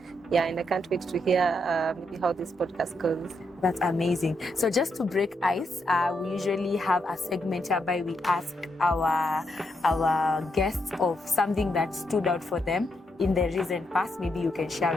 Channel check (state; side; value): normal; both; correlation 0.80